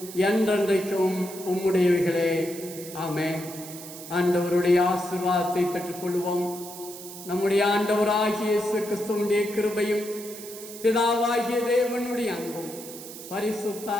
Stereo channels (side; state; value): right; noise; hiss, 13 dB below the sound